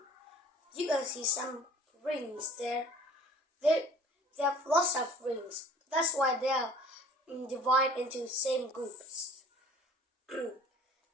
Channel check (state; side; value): normal; both; correlation 0.50